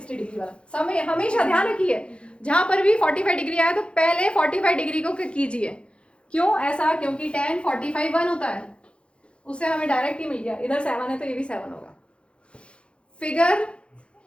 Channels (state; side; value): late; right; 0.058 ms